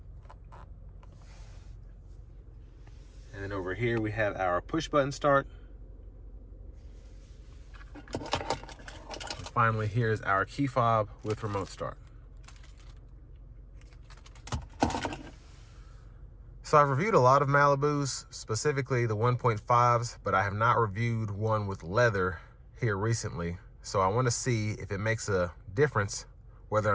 And then over here we have our push button start. And finally, here's our key fob with remote start. So I've reviewed a lot of Malibus, specifically the 1.5s, but I have not reviewed one with leather here recently. So I want to see if it makes a difference, whether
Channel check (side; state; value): both; identical; correlation 1.00